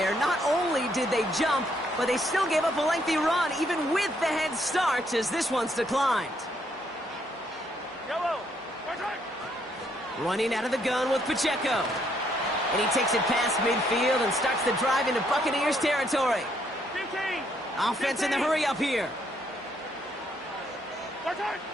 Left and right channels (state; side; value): normal; both; correlation 0.71